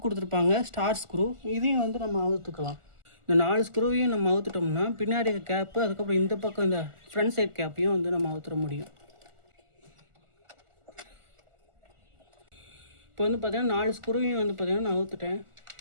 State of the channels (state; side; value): late; left; 1.4 ms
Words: கொடுத்துருப்பாங்க, ஸ்டார் ஸ்க்ரூ. இதையும் வந்து நம்ம அவுத்துக்கலாம். இந்த 4 ஸ்க்ரூவையும் நம்ம அவுத்துட்டோம்னா பின்னாடி கேப்பு, அதுக்கப்புறம் இந்த பக்கம் இந்த ஃப்ரண்ட் சைட் கேப்பையும் வந்து நம்ம அவுத்துற முடியும். இப்போ வந்து பார்த்திங்கன்னா 4 ஸ்க்ரூவையும் வந்து பார்த்திங்கன்னா நான் அவுத்துட்டேன்.